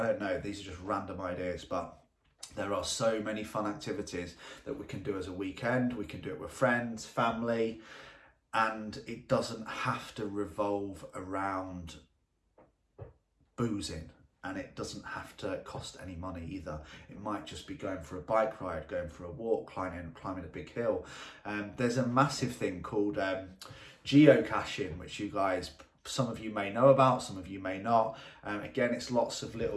don't know, these are just random ideas, but there are so many fun activities that we can do as a weekend. We can do it with friends, family, and it doesn't have to revolve around boozing, and it doesn't have to cost any money either. It might just be going for a bike ride, going for a walk, climbing a big hill. There's a massive thing called geocaching, which you guys, some of you may know about, some of you may not. Again, it's lots of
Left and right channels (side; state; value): both; identical; correlation 1.00